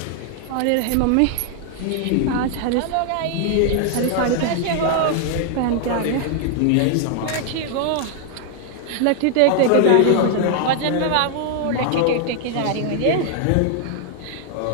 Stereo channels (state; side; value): different; both; correlation 0.00